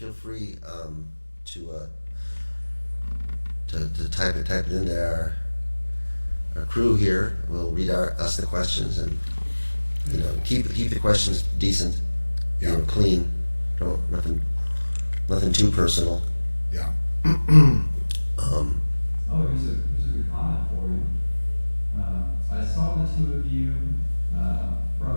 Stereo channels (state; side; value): inverted; both; correlation -1.00